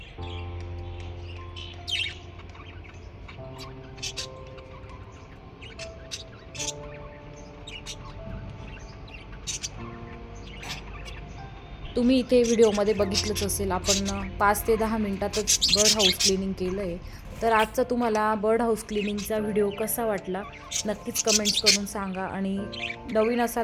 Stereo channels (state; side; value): identical; both; correlation 1.00